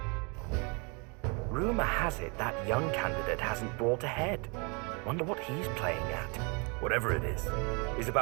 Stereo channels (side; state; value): left; quieter; 32.5 dB